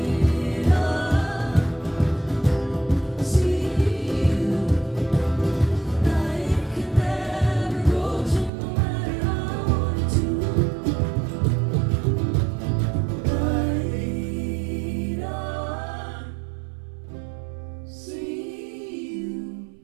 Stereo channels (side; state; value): left; drops out; at 8.5 s